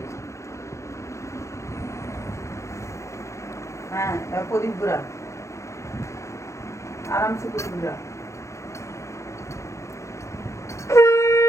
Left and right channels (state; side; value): late; right; 0.14 ms